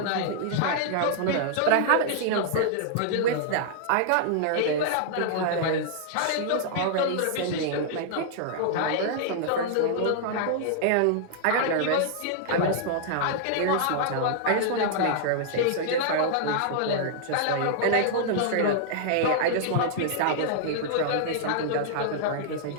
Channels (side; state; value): both; different; correlation -0.01